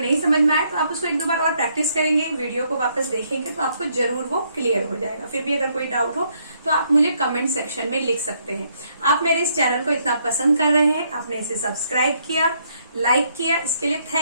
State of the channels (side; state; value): both; inverted; correlation -0.72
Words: नहीं समझ में आए तो आप उसको 1-2 बार और प्रैक्टिस करेंगे, वीडियो को वापस देखेंगे तो आपको जरूर वो क्लियर हो जाएगा। फिर भी अगर कोई डाउट हो तो आप मुझे कमेंट सेक्शन में लिख सकते हैं। आप मेरे इस चैनल को इतना पसंद कर रहे हैं, आपने इसे सब्सक्राइब किया, लाइक किया, इसके लिए